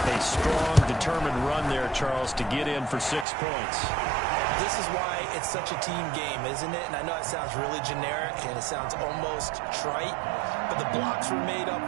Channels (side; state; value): left; drops out; at 3.2 s